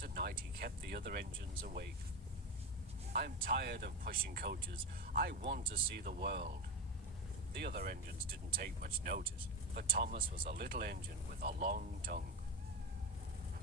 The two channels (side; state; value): both; normal; correlation 0.19